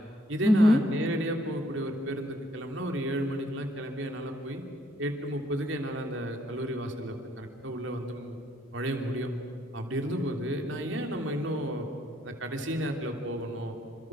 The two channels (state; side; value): normal; both; correlation 0.68